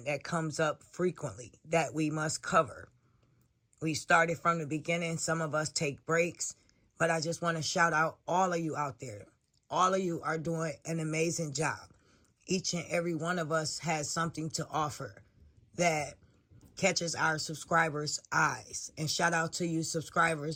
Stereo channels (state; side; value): identical; both; correlation 1.00